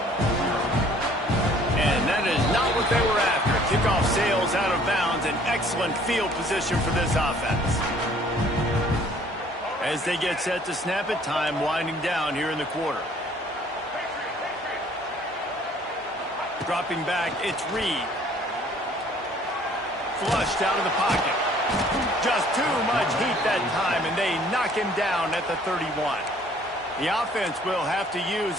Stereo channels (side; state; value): both; normal; correlation 0.57